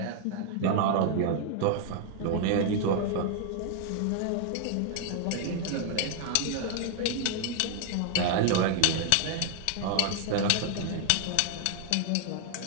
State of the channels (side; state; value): both; different; correlation 0.00